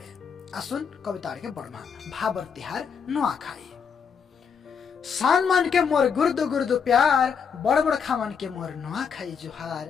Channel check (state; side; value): quieter; right; 6.6 dB